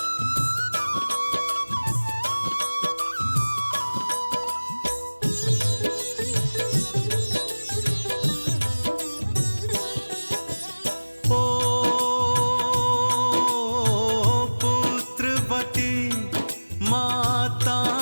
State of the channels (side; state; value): both; inverted; correlation -1.00